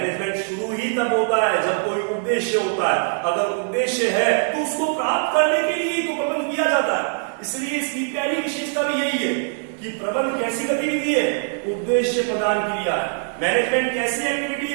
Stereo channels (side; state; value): left; silent; 62 dB below the other